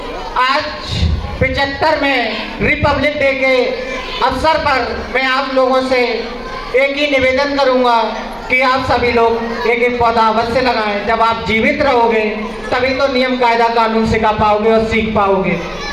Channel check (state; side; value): identical; both; correlation 1.00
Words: आज 75 में रिपब्लिक डे के अवसर पर मैं आप लोगों से एक ही निवेदन करूंगा कि आप सभी लोग एक एक पौधा अवश्य लगाएं। जब आप जीवित रहोगे तभी तो नियम कायदा कानून सिखा पाओगे और सीख पाओगे।